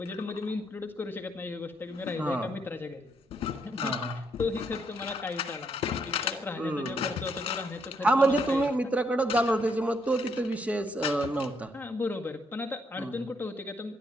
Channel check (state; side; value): normal; both; correlation 0.74